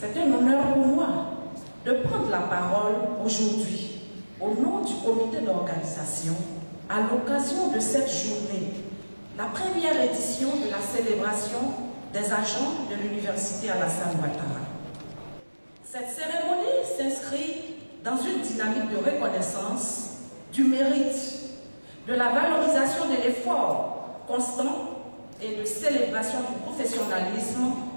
un honneur pour moi de prendre la parole aujourd'hui au nom du comité d'organisation à l'occasion de cette journée, la première édition de la célébration des agents de l'Université Alassane Ouattara. Cette cérémonie s'inscrit dans une dynamique de reconnaissance du mérite, de la valorisation de l'effort constant et de célébration du professionnalisme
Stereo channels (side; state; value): both; inverted; correlation -1.00